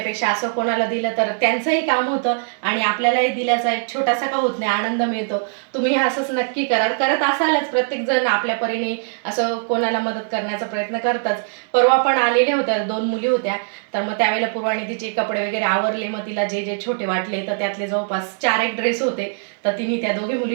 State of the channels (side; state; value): left; silent; digital silence